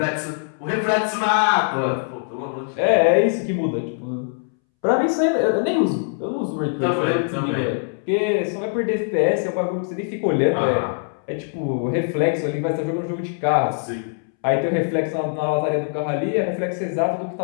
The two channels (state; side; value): silent; right; 64 dB below the other